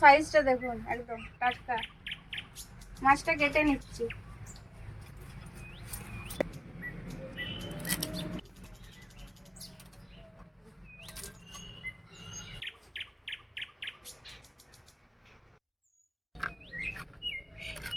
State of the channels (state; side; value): identical; both; correlation 1.00